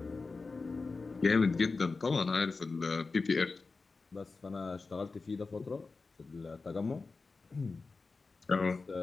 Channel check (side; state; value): right; quieter; 4.1 dB